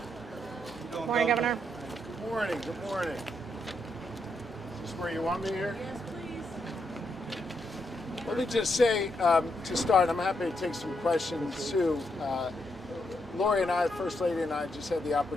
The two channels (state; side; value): normal; both; correlation 0.80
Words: Good morning, Governor. Good morning. Good morning. Is this where you want me here? Yes, please. Let me just say, to start, I'm happy to take some questions, too. Lori and I, First Lady and I, just had the